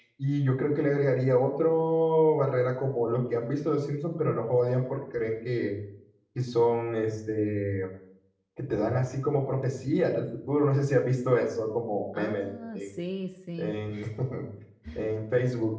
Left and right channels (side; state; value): both; identical; correlation 1.00